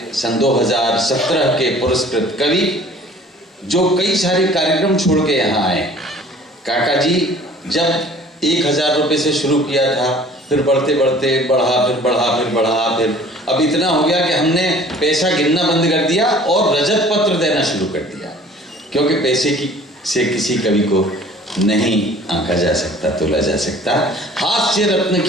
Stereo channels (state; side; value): normal; both; correlation 0.50